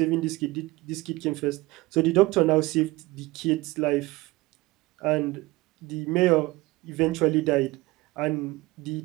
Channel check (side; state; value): left; quieter; 20.9 dB